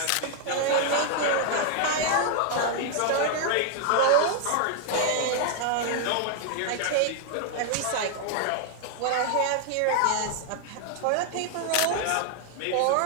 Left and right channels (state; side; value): different; both; correlation 0.00